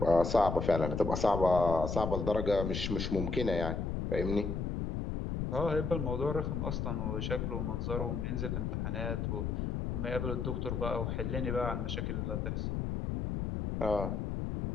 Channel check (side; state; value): left; noise; rumble, 2 dB below the sound